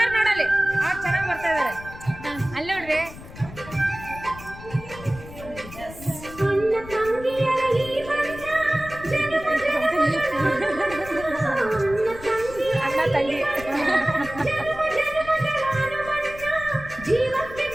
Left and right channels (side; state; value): left; noise; rumble, 15 dB below the sound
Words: ನೋಡಲ್ಲಿ. ಅವ್ರು ಚೆನ್ನಾಗಿ ಬರ್ತಾ ಇದಾರೆ ಅಲ್ಲಿ ನೋಡ್ರಿ. ಅಣ್ಣ ತಂಗಿ